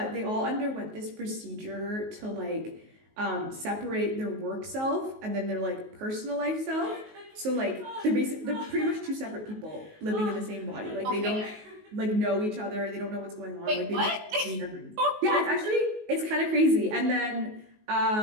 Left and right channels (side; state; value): left; late; 19 ms